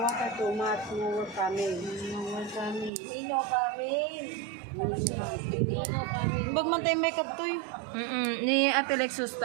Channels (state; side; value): drops out; left; at 2.9 s